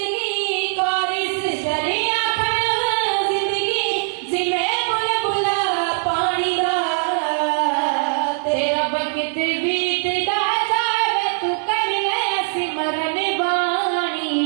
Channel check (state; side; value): silent; left; 63 dB below the other